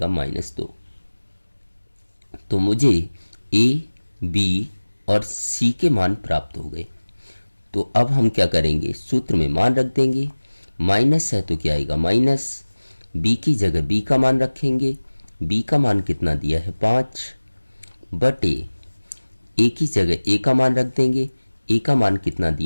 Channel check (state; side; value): inverted; both; correlation -1.00